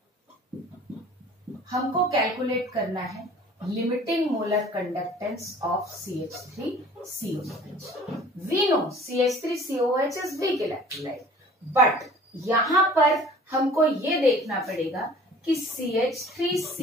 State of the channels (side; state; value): both; normal; correlation 0.48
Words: हमको कैलकुलेट करना है limiting molar conductance of CH3COOH. We know CH3COOH is weak electrolyte, but यहां पर हमको ये देखना पड़ेगा कि